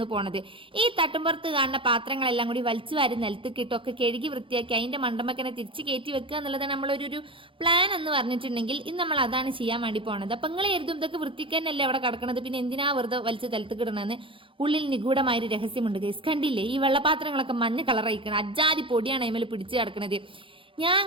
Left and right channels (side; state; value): left; late; 0.25 ms